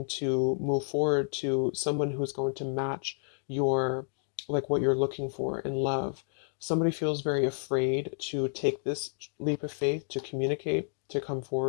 to move forward to someone who's going to match your, like, what you're looking for in love. Somebody feels very afraid to take this leap of faith, to communicate, to come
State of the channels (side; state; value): right; silent; digital silence